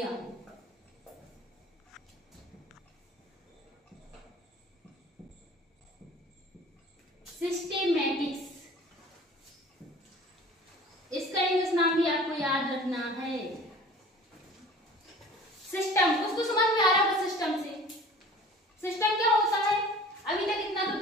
सिस्टेमैटिक्स, इसका इंग्लिश नाम भी आपको याद रखना है। सिस्टम, कुछ तो समझ में आ रहा है सिस्टम से। सिस्टम क्या होता है? अभी तक इतना तो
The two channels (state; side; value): normal; both; correlation 0.45